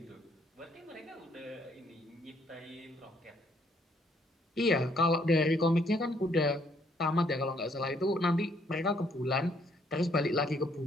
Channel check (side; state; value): both; normal; correlation 0.68